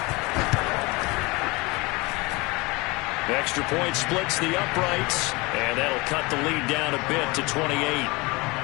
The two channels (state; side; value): quieter; right; 24.4 dB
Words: Extra point splits the uprights, and that'll cut the lead down a bit to 28.